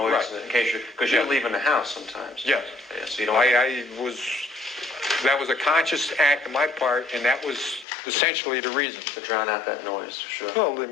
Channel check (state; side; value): drops out; right; at 7.9 s